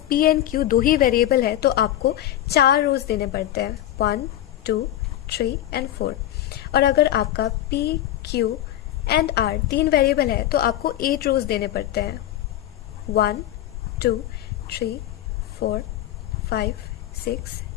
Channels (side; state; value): right; quieter; 12.7 dB